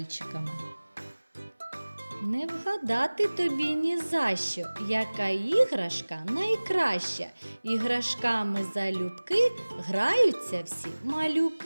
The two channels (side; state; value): both; inverted; correlation -1.00